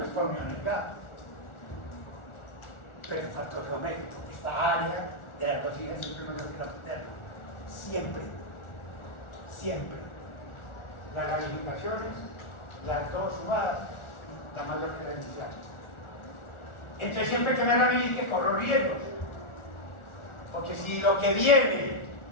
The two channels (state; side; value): late; right; 1.4 ms